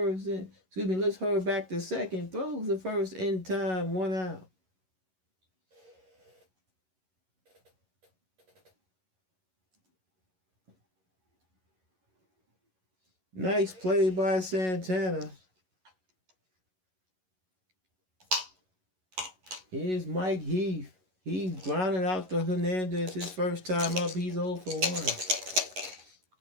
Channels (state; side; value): late; left; 11 ms